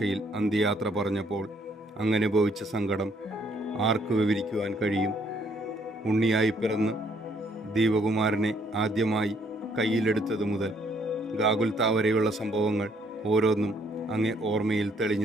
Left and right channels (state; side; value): normal; both; correlation 0.67